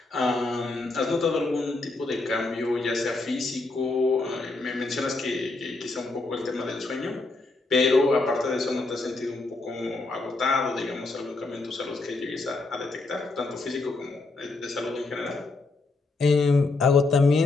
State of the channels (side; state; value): right; quieter; 3.4 dB